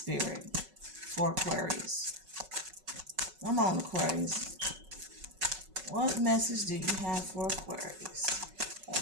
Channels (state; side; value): late; left; 5.3 ms